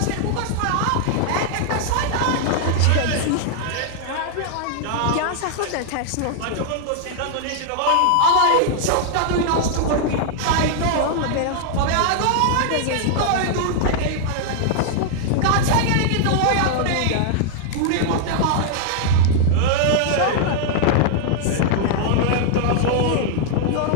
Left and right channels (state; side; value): different; both; correlation 0.00